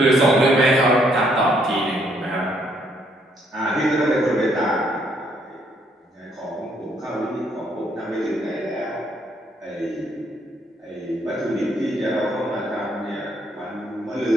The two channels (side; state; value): both; normal; correlation 0.70